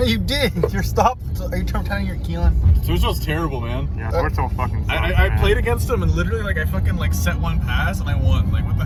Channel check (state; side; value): identical; both; correlation 1.00